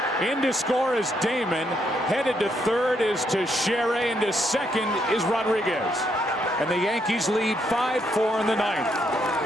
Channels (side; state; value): both; normal; correlation 0.75